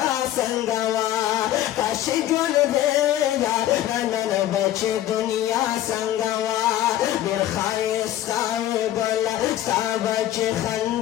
څنګه وه کاش چې ژوندی یاره نن به چې دنیا څنګه وه ډېر ښایسته وې ګله ستا به چې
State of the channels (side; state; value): right; quieter; 13.0 dB